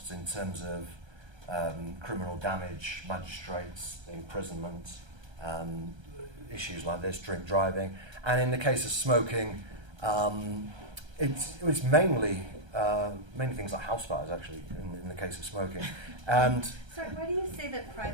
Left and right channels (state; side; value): late; left; 1.3 ms